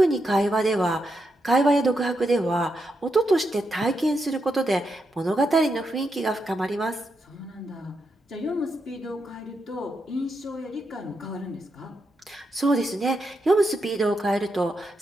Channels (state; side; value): normal; both; correlation 0.83